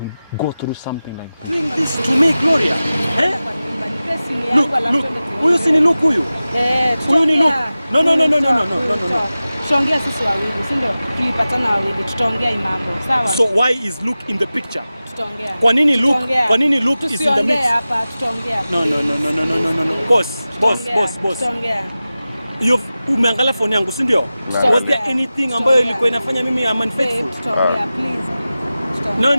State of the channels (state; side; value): inverted; both; correlation -0.95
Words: will go through something like that. Doing this to me, Gloria. Eh? Look, huyu si ni Luke huyu? Huyu ni Luke. No. Tutaongea sisi wawili, si ndio? Tulipatana wawili, tutaongea mambo. Sawa? So why is Luke in the picture? Tutaongea. Kwa nini Luke is in the mix? Hapa tutaongea. No. Boss. Tutaongea. Umeangalia phone yangu, si ndio? Was there anything ambayo ilikuwa inafanya mimi am unfaithful? Tutaongea, please. No.